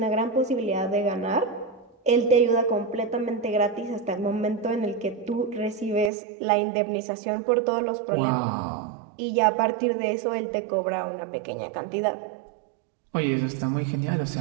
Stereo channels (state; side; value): drops out; left; at 6.1 s